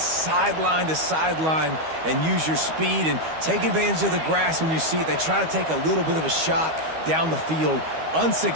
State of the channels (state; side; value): late; left; 12 ms